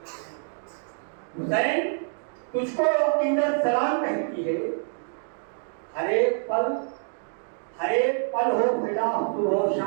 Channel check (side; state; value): left; silent; digital silence